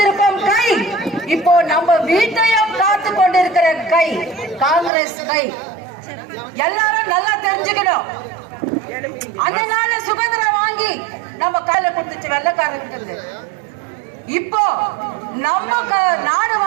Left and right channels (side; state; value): left; drops out; at 4.9 s